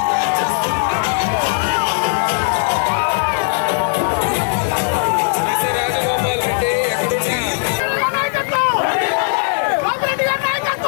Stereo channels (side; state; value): right; silent; 68 dB below the other